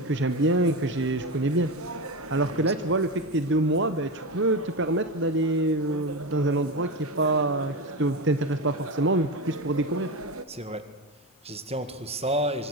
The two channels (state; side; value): normal; both; correlation 0.19